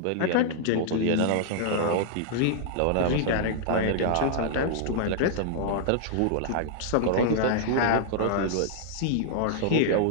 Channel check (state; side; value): different; both; correlation -0.01